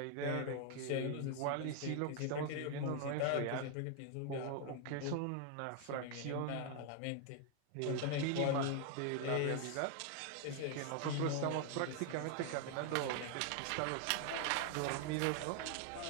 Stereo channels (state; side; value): different; both; correlation 0.00